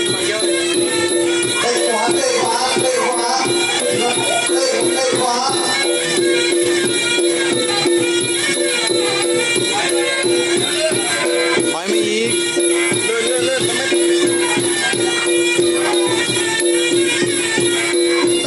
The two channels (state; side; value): identical; both; correlation 1.00